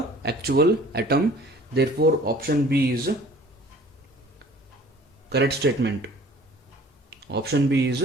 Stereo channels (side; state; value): both; normal; correlation 0.50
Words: actual atom. Therefore option B is correct statement. Option B is